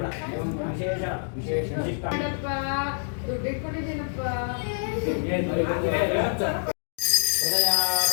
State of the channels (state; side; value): silent; right; digital silence